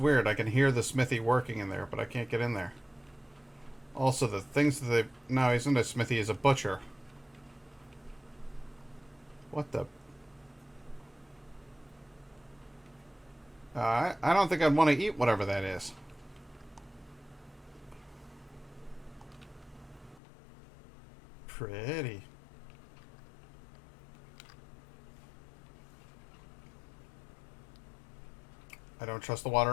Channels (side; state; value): right; drops out; at 20.2 s